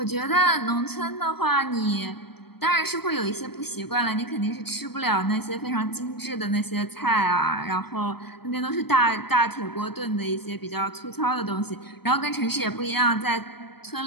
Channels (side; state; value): right; late; 0.97 ms